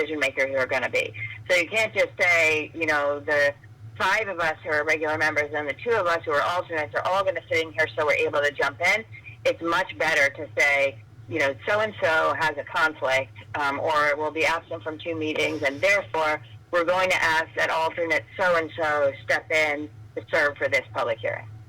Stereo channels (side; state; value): both; identical; correlation 1.00